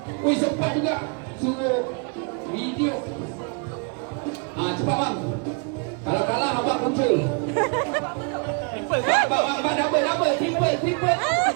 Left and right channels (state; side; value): quieter; left; 35.9 dB